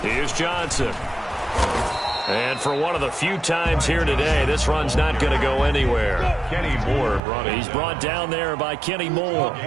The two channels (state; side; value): drops out; left; at 7.2 s